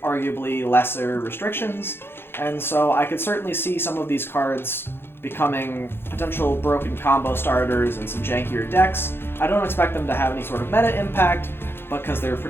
arguably lesser restrictions, and so I could certainly see some of these cards becoming potential broken combo starters in some jankier decks. I don't expect them to have any sort of meta impact, because they're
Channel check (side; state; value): right; late; 0.11 ms